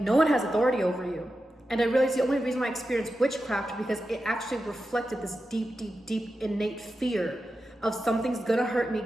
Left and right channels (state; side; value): normal; both; correlation 0.91